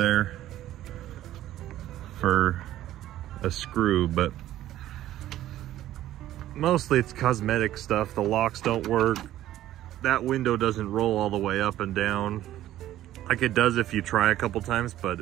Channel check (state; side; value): quieter; left; 13.5 dB